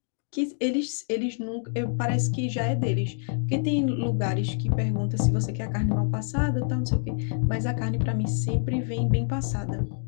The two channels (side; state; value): right; silent; digital silence